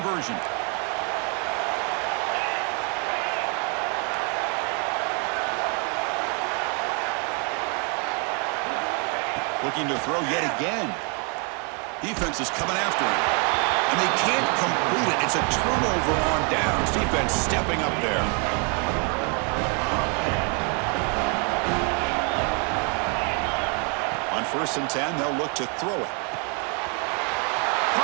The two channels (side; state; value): left; quieter; 36.5 dB